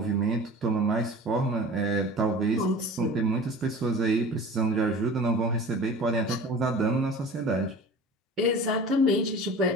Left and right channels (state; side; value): normal; both; correlation 0.39